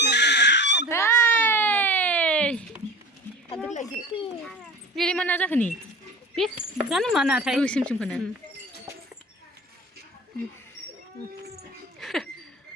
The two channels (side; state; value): both; normal; correlation 0.37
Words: बेलाय मा ना जाखो नि बे जानो मा नाथाय गोसोमखौनो